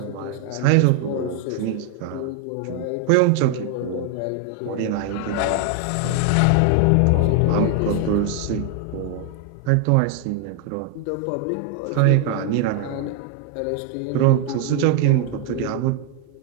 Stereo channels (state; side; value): different; both; correlation 0.00